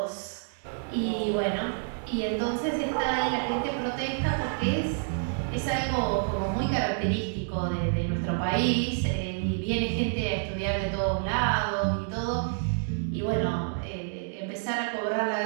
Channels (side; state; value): left; silent; digital silence